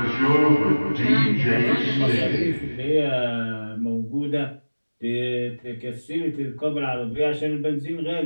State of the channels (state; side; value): inverted; both; correlation -1.00